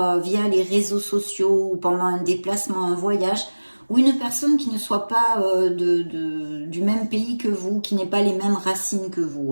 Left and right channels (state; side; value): inverted; both; correlation -1.00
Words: via les réseaux sociaux ou pendant un déplacement, un voyage, ou une personne qui ne soit pas du même pays que vous, qui n'ait pas les mêmes racines que